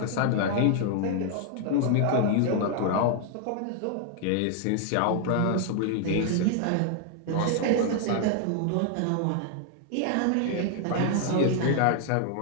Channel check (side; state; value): both; different; correlation 0.00